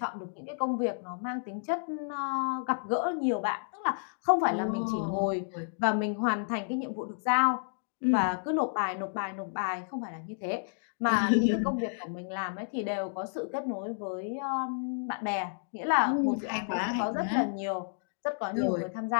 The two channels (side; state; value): right; silent; digital silence